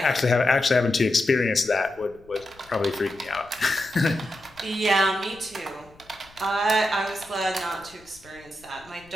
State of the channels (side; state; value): left; noise; rumble, 27 dB below the sound